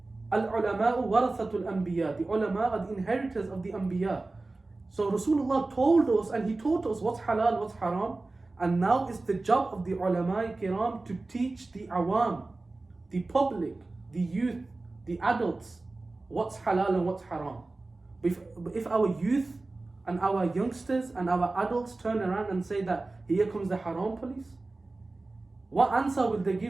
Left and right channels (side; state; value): left; quieter; 3.2 dB